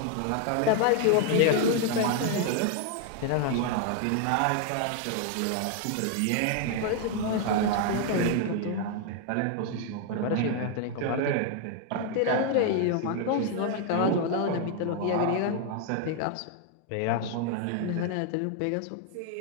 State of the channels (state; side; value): different; both; correlation 0.00